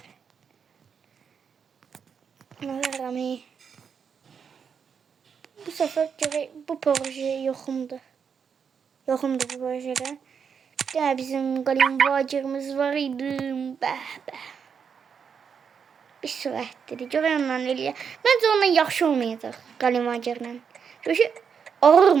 Rami. Bu sefer bu proje yoxumdur. Yoxumdur bu projede. Ya bizim qalim vacirimiz var idi. Bəh. Bir sürətdir. Görənlə eləyə. Məncə ondan yaxşı olmayacaq qalim vacirlə. Çünki ağır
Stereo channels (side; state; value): left; quieter; 6.7 dB